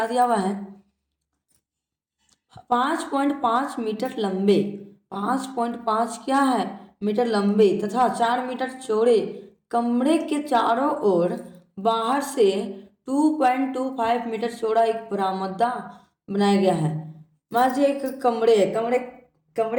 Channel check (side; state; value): both; identical; correlation 1.00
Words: दिया हुआ है। 5.5 मीटर लंबे, 5.5 क्या है मीटर लंबे तथा 4 मीटर चौड़े कमरे के चारों ओर बाहर से 2.25 मीटर चौड़ा एक बरामदा बनाया गया है। मान लीजिए एक कमरे है,